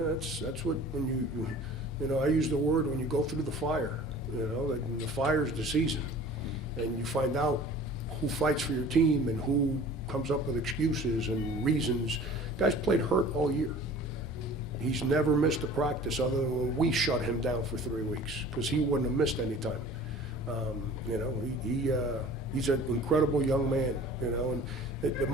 that's what, when you know, I use the word when you go through the fire, you know, the fire's the season, and you find out who fights for your team and who comes up with excuses and reasons. Guy's played hurt all year. He's never missed a practice other than when we shut him down for 3 weeks, because he wouldn't have missed any time. You know, he's an incredible young man, you know, and the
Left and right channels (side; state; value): both; normal; correlation 0.45